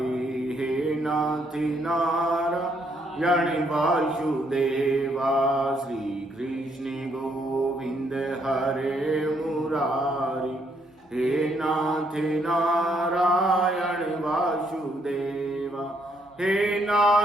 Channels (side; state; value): both; normal; correlation 0.72